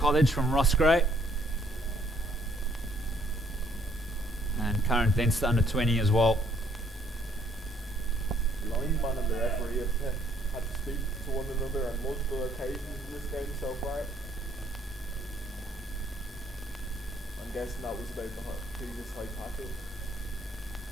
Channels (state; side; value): normal; both; correlation 0.66